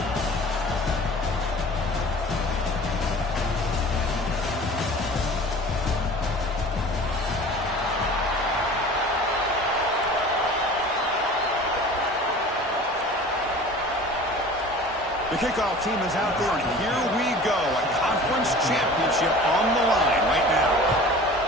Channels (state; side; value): normal; both; correlation 0.42